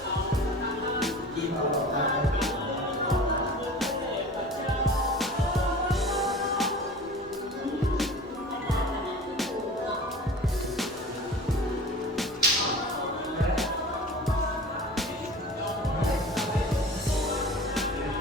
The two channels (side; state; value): both; normal; correlation 0.39